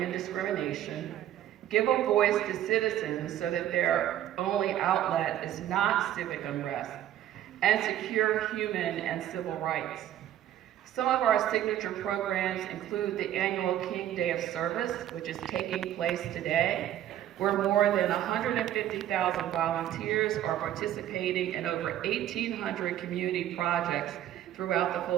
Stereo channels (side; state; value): left; quieter; 11.9 dB